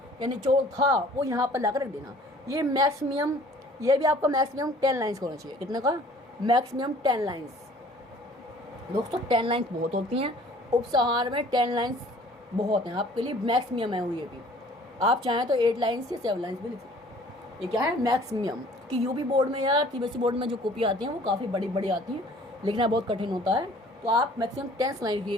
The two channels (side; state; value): both; normal; correlation 0.52